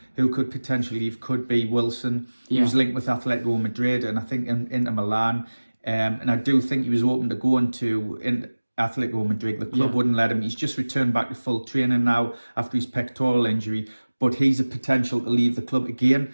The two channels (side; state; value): both; inverted; correlation -1.00